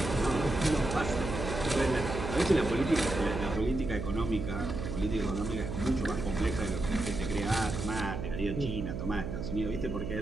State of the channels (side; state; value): right; noise; hum, 5 dB below the sound